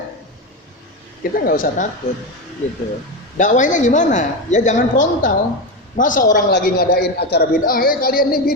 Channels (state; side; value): normal; both; correlation 0.15